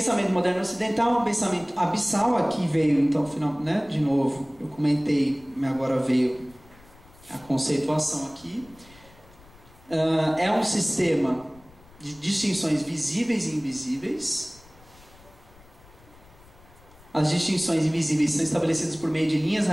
moderno ocidental, um pensamento abissal. Aqui veio, então, né, de novo, eu comentei, agora veio a conceituação aqui. É um sistema de distinções visíveis e invisíveis. As distinções invisíveis são estabelecidas por meio de linhas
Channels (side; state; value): left; noise; rumble, 25 dB below the sound